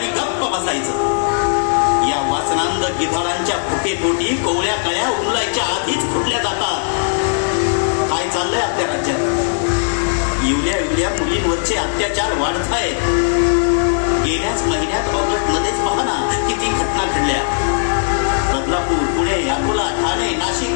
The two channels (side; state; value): right; silent; 57 dB below the other